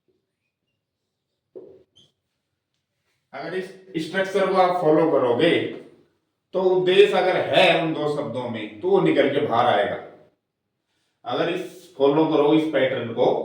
अगर इस स्ट्रक्चर को आप फॉलो करोगे तो उद्देश्य अगर है उन दो शब्दों में तो वो निकल के बाहर आएगा। अगर इस फॉलो करो इस पैटर्न को,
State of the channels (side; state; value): both; identical; correlation 1.00